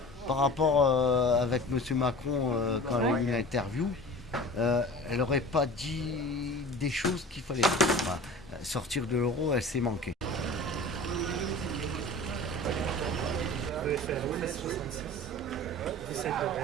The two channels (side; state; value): both; normal; correlation 0.39